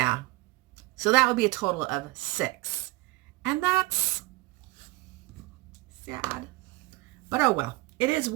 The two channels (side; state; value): left; quieter; 21.1 dB